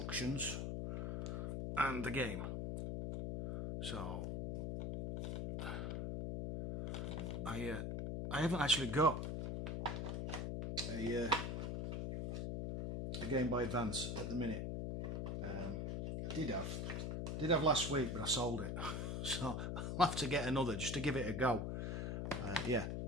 and the game. So I haven't actually got a Game Boy Advance at the minute. I did have last week, but I sold it. So I'll have to get another just to give it a go. Yeah,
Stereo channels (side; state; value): left; noise; hum, 2 dB below the sound